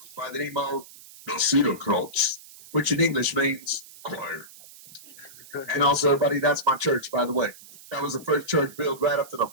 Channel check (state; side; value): noise; right; hiss, 20 dB below the sound